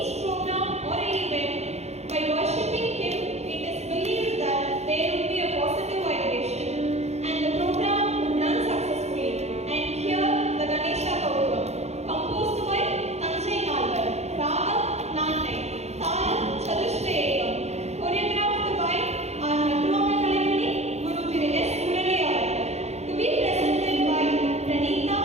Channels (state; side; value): late; left; 0.31 ms